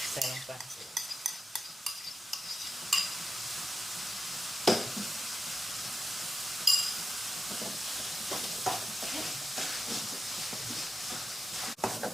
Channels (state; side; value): normal; both; correlation 0.90